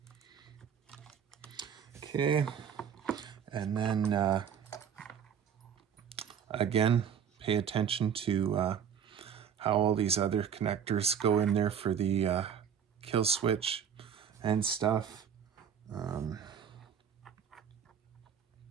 Okay, and then again, pay attention to how all these other connectors go in there for the kill switch and stuff.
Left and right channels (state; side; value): quieter; left; 7.9 dB